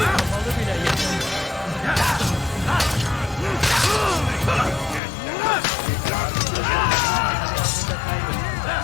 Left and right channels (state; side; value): drops out; right; at 5.0 s